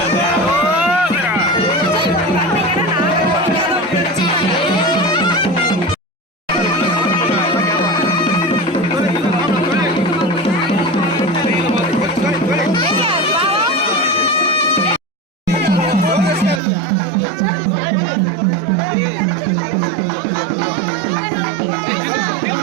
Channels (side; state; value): left; drops out; at 16.6 s